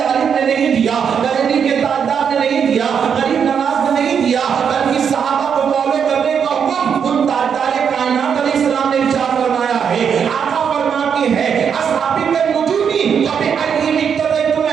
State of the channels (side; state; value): left; quieter; 7.3 dB